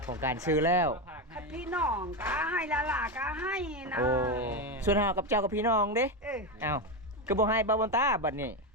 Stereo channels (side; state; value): both; normal; correlation 0.12